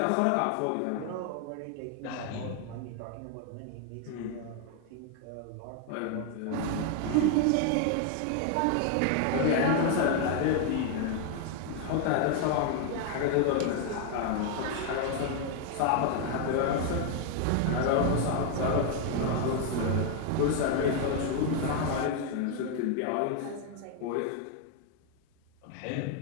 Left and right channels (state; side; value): different; both; correlation 0.00